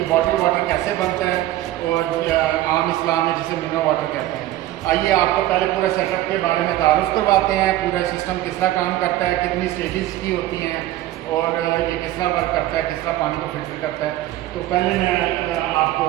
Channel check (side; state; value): left; quieter; 14.8 dB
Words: बॉटल वाटर कैसे बनता है और आम इस्लाम में जिसे मिनरल वाटर कहते हैं। आइए आपको पहले पूरे सेटअप के बारे में तारुफ करवाते हैं, पूरा सिस्टम किस तरह काम करता है, कितनी स्टेजेस की होती हैं और ये किस तरह वर्क करता है, किस तरह पानी को फिल्टर करता है। तो पहले मैं आपको